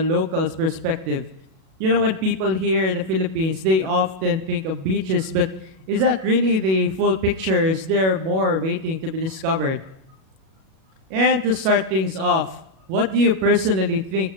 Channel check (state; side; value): late; left; 37 ms